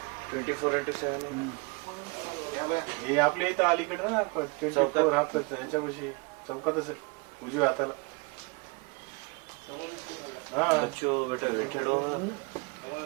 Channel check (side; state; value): left; quieter; 28.4 dB